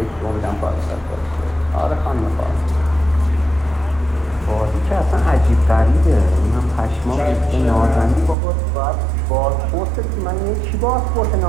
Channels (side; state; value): left; drops out; at 8.3 s